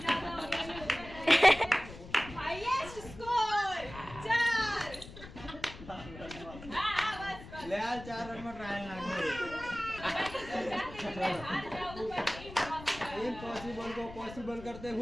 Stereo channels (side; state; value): left; noise; rumble, 15 dB below the sound